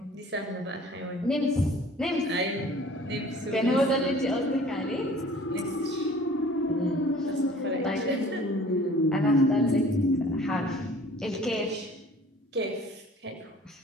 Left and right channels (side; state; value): both; normal; correlation 0.49